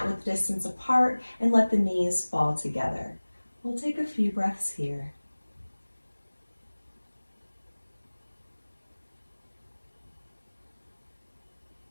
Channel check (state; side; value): inverted; both; correlation -1.00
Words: with distance apart and let the knees fall together. We'll take a few breaths here.